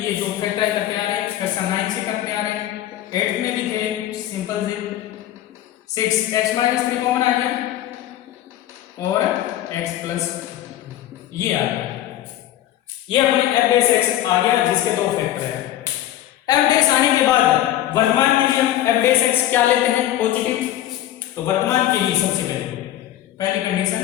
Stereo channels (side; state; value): right; quieter; 12.9 dB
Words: ये जो फैक्टर करते आ रहे हैं, कक्षा 9 से करते आ रहे हैं, 8 में भी थे सिंपल से 6x माइनस 3 कॉमन आ गया और x प्लस ये आ गया, ये अपने f डैश x आ गया जिसके 2 फैक्टर है। f डैश आने के बाद वर्तमान के लिए हम f डैश x क्या लेते हैं पॉजिटिव। तो वर्तमान के लिए सबसे पहली कंडीशन,